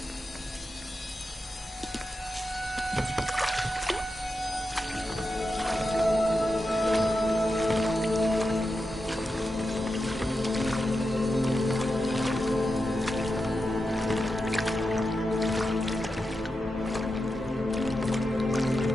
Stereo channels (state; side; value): normal; both; correlation 0.89